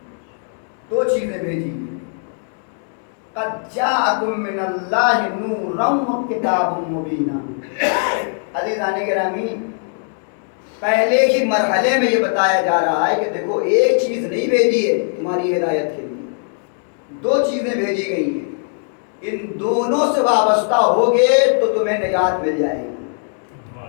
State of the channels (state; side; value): silent; right; 64 dB below the other